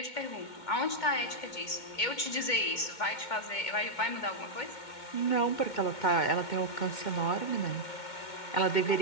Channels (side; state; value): right; late; 2.2 ms